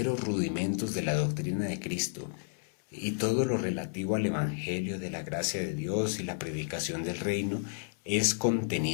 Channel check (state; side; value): silent; right; 57 dB below the other